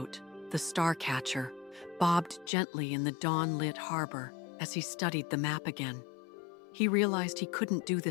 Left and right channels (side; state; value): right; drops out; at 2.5 s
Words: the Starcatcher, bobbed gently in the dawn-lit harbor as he studied the map again. He realized he couldn't do